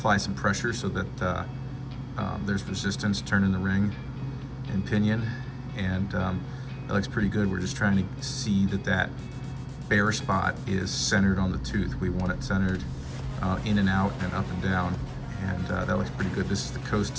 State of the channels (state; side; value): identical; both; correlation 1.00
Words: some pressure so that there's resistance turning the ring and pinion, and that looks pretty good. We're just trying to see that that bare spot is centered on the tooth. We want it centered in and out and up and down, and that looks pretty good. This is the coast